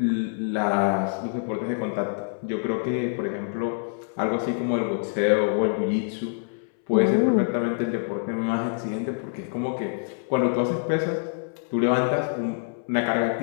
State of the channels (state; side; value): silent; right; 61 dB below the other